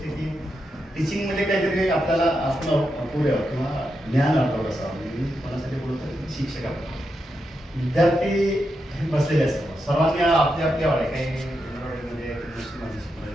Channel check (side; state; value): both; normal; correlation 0.85